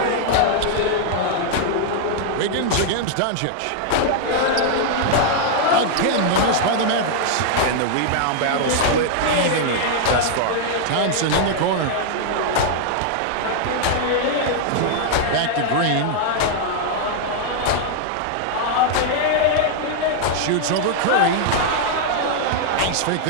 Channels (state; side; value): different; both; correlation -0.01